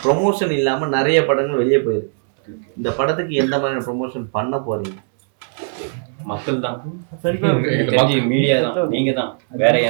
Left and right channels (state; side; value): silent; left; 66 dB below the other